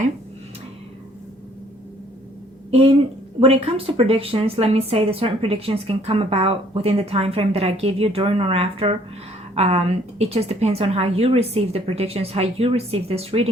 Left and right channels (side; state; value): both; normal; correlation 0.61